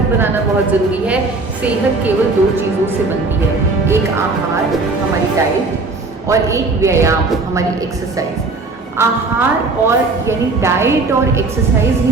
बनाना बहुत ज़रूरी है। सेहत केवल दो चीज़ों से बनती है, एक आहार हमारी डाइट और एक व्यायाम हमारी एक्सरसाइज। आहार और यानी डाइट और एक्सरसाइज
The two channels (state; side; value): quieter; left; 3.6 dB